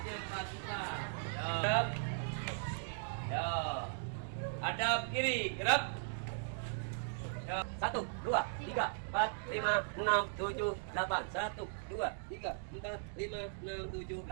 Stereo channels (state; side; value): silent; left; digital silence